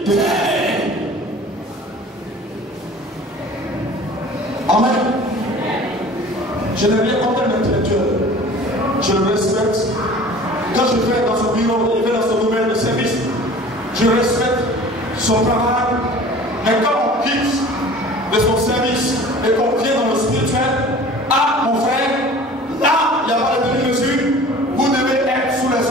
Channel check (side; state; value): both; normal; correlation 0.44